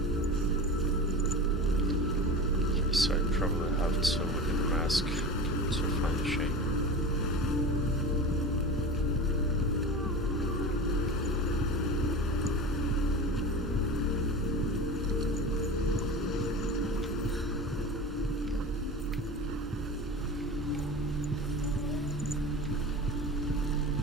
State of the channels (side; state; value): both; normal; correlation 0.31